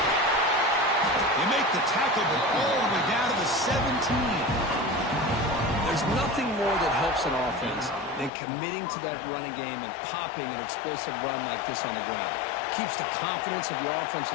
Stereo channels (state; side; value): drops out; right; at 8.3 s